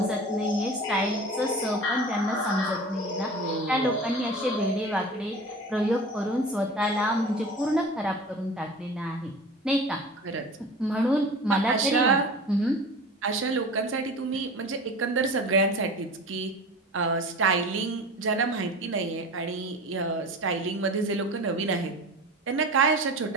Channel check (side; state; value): both; normal; correlation 0.36